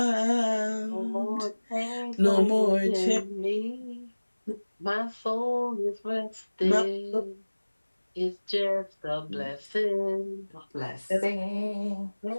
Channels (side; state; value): both; inverted; correlation -1.00